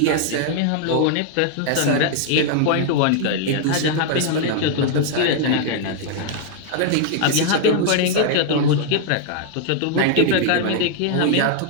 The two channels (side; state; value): both; different; correlation 0.00